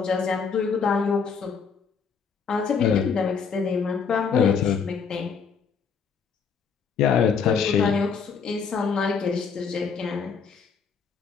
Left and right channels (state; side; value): quieter; right; 6.0 dB